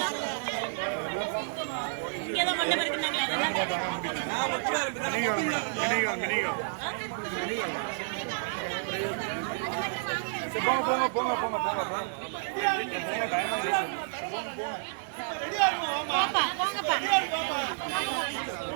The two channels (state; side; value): silent; left; digital silence